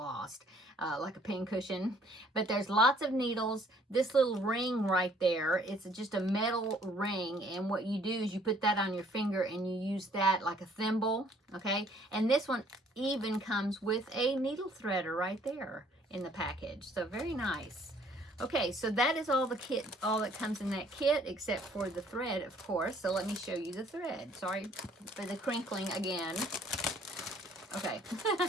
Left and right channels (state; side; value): normal; both; correlation 0.61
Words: like a pin cushion. But there's lots of needles. This little ring right there, it's just a metal ring, and what you do is you put that on your finger and you use that like a thimble, okay? And this one even comes with a needle threader right there in the package. So very nice. Okay, so that is all the kit, all that comes in that kit, except for the thread, of course. So let me show you the thread. Sorry for the crinkling again. Okay.